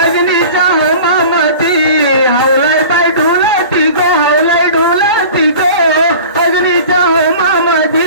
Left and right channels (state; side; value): inverted; both; correlation -0.40